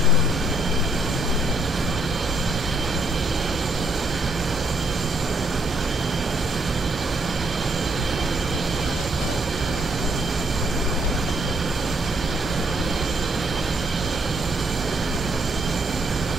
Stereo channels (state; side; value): normal; both; correlation 0.71